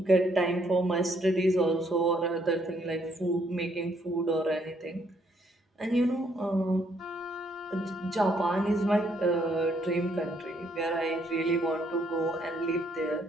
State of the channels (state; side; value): normal; both; correlation 0.70